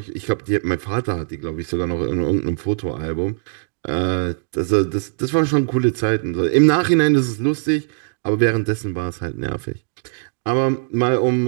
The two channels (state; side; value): silent; left; digital silence